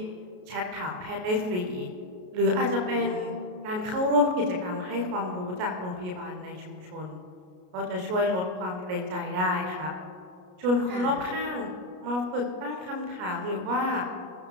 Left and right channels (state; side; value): late; left; 33 ms